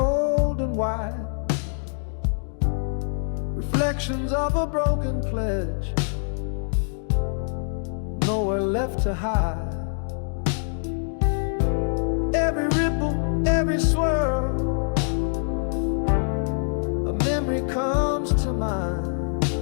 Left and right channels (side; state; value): right; silent; digital silence